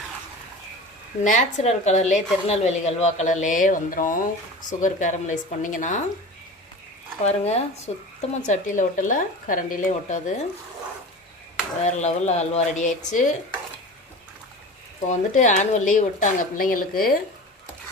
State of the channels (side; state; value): both; normal; correlation 0.34